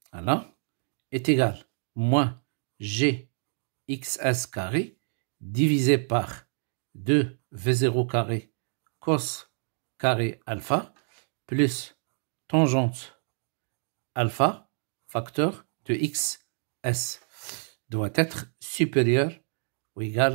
voilà, est égal à moins GXS carré divisé par 2V0 carré cos carré alpha plus tangente alpha facteur de XS doit être supérieur ou égal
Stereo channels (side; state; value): left; silent; digital silence